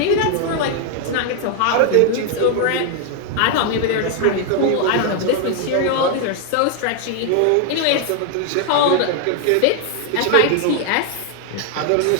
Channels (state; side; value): different; both; correlation 0.00